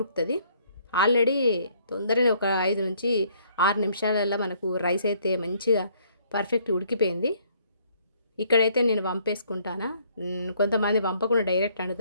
ఆల్రెడీ తొందరనే ఒక 5-6 నిమిషాలల్లో మనకు రైస్ అయితే మంచిగా పర్ఫెక్ట్ ఉడికిపోయింది. ఇక్కడైతే నేను వంపేసుకుంటానా. కొంతమంది వంపకుండా డైరెక్ట్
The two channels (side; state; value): both; inverted; correlation -0.64